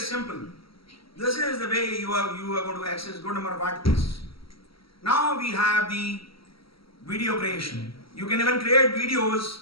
This is the way you are going to access good number of articles. Now we have the video creation. You can even create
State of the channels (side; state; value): right; late; 0.75 ms